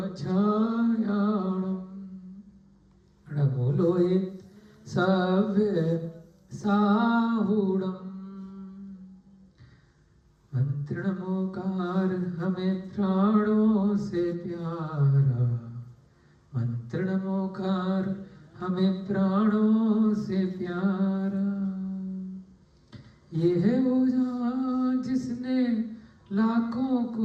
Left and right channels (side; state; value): both; identical; correlation 1.00